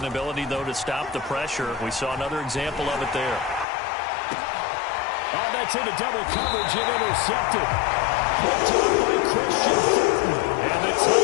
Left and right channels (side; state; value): right; drops out; at 3.7 s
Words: though, to stop the pressure. We saw another example of it there. Oh, that's into double coverage and intercepted. Picked up by Christian Fulton. And the